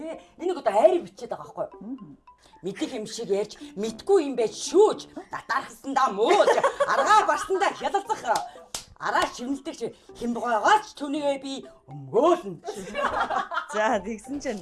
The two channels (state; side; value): identical; both; correlation 1.00